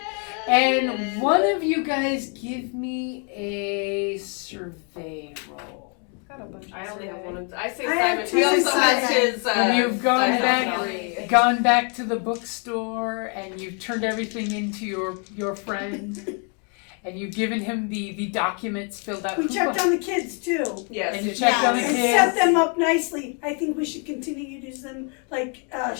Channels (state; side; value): quieter; right; 37.6 dB